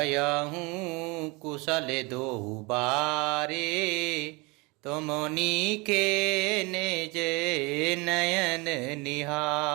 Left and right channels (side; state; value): left; quieter; 26.8 dB